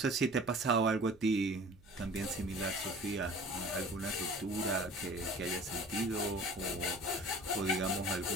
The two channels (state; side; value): noise; right; hum, 26 dB below the sound